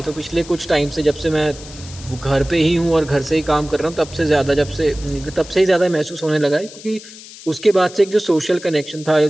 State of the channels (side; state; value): left; noise; hiss, 17 dB below the sound